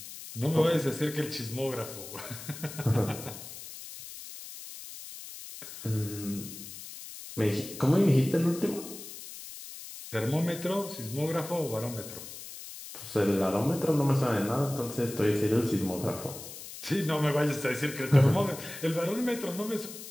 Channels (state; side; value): noise; left; hiss, 12 dB below the sound